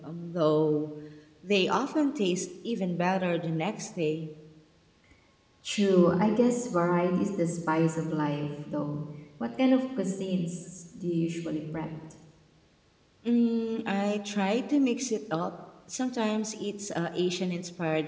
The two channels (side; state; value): both; identical; correlation 1.00